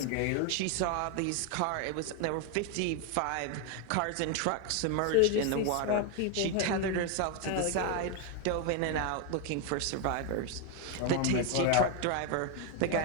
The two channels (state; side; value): different; both; correlation 0.01